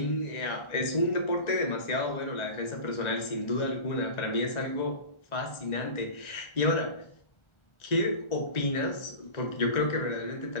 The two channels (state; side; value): late; right; 1.4 ms